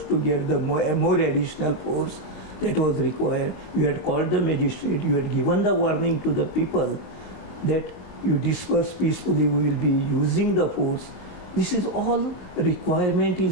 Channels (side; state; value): right; late; 22 ms